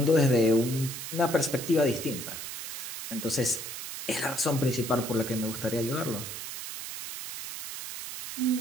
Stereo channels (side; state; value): right; noise; hiss, 8 dB below the sound